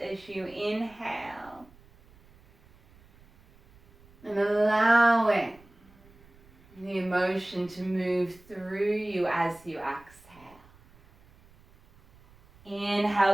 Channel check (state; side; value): noise; right; rumble, 27 dB below the sound